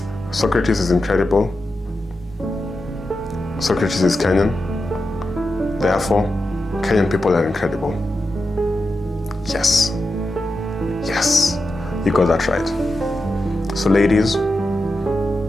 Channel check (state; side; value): normal; both; correlation 0.89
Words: Socrates is incredible. Socrates is Kenyan. Therefore, Kenyan people are incredible. Yes. Yes. You got that right. So ladies,